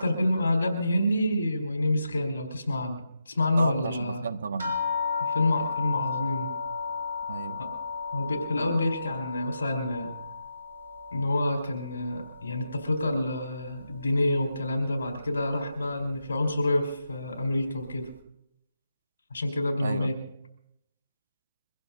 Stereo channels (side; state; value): both; inverted; correlation -0.85